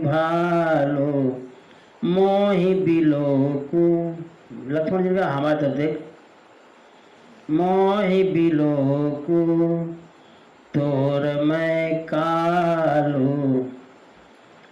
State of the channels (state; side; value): identical; both; correlation 1.00